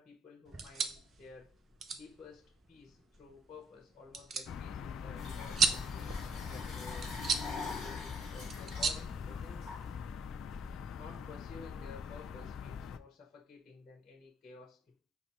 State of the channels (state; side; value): normal; both; correlation 0.65